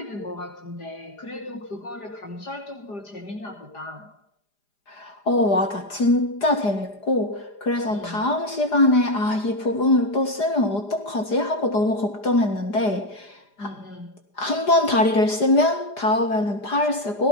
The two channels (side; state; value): right; late; 4.9 ms